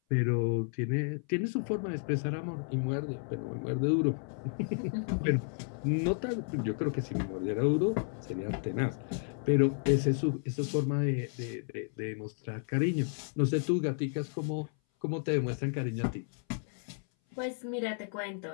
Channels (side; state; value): right; silent; 56 dB below the other